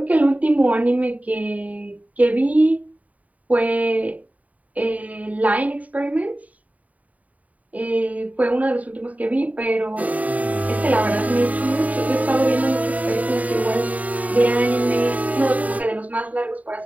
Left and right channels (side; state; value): left; late; 0.072 ms